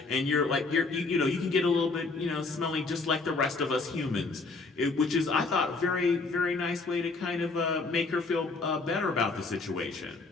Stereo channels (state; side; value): quieter; right; 3.8 dB